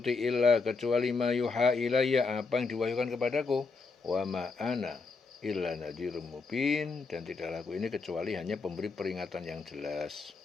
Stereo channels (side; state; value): right; quieter; 4.3 dB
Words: illa, kecuali ma yuha ilayya, apa yang diwahyukan kepadaku, wa ma ana illa nadhirum mubin, dan tidaklah aku ini kecuali hanya pemberi peringatan yang jelas.